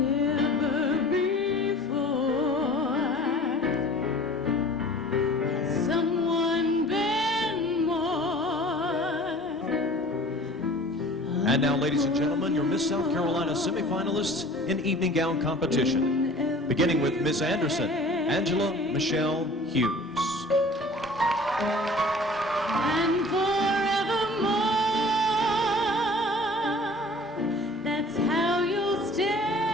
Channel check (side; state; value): both; normal; correlation 0.46